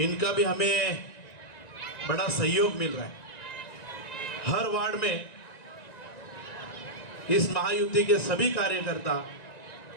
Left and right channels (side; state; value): right; late; 1.9 ms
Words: भी हमें बड़ा सहयोग मिल रहा है। हर वार्ड में इस महायुति के सभी कार्यकर्ता